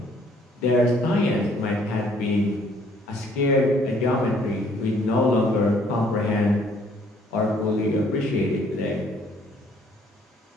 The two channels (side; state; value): both; normal; correlation 0.62